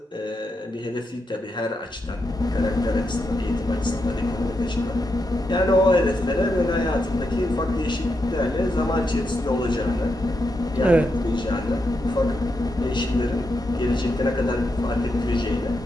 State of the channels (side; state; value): both; normal; correlation 0.84